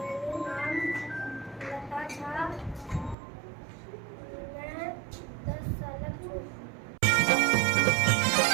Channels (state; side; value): drops out; left; at 3.2 s